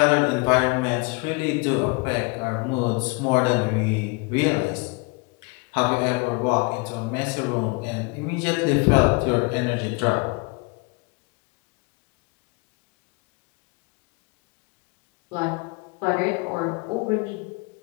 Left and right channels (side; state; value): right; quieter; 29.7 dB